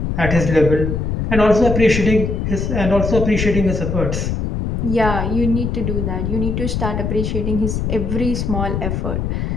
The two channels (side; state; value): left; noise; rumble, 1 dB below the sound